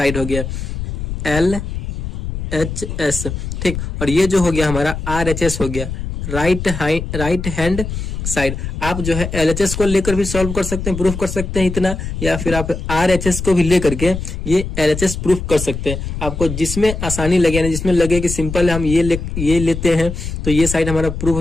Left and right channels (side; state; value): left; noise; rumble, 5 dB below the sound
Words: हो गया LHS, ठीक। और ये जो हो गया हमारा RHS हो गया, राइट हैंड साइड। आप जो है LHS को लेकर भी सॉल्व कर सकते हैं, प्रूफ कर सकते हैं इतना, या फिर आप RHS को भी लेकर के ये LHS प्रूफ कर सकते हैं। आपको जिसमें आसानी लगे, यानी जिसमें लगे कि सिंपल है हम ये लेते हैं तो ये साइड हमारा प्रूफ हो